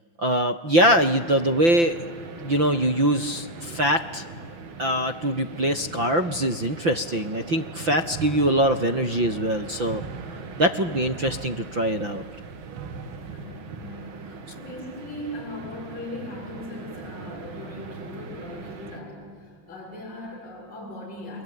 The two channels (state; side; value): late; left; 5.9 ms